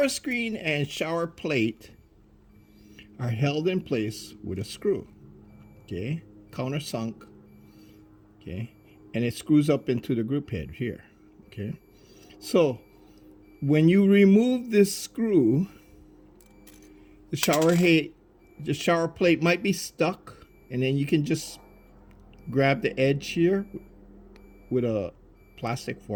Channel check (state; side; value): identical; both; correlation 1.00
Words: screen and shower plate are held in place with a screw. Okay, countersunk. Okay, and it screws up into the group head here. Okay, so when you remove this screw, the shower plate might be stuck, and then you can just grab the edge here with a plastic